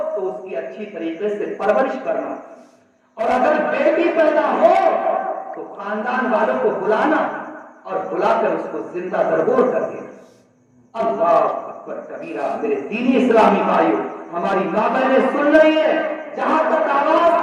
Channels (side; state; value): both; identical; correlation 1.00